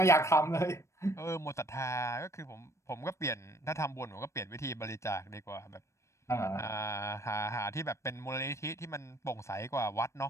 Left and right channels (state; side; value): late; right; 0.14 ms